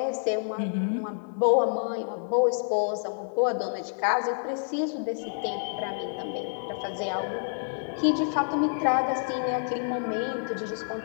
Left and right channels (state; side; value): silent; right; 59 dB below the other